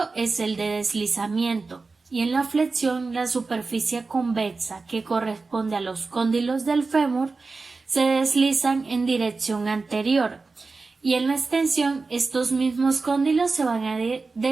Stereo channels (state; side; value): quieter; left; 4.0 dB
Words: es el de deslizamiento, y en la flexión la superficie convexa, que corresponde a los cóndilos del fémur, se deslizan en dirección anterior, y en la extensión estos mismos cóndilos se van a